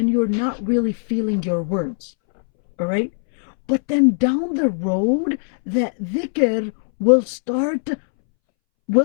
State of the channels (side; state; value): right; silent; 64 dB below the other